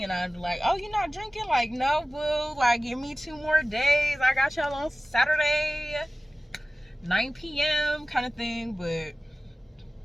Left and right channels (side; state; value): both; normal; correlation 0.97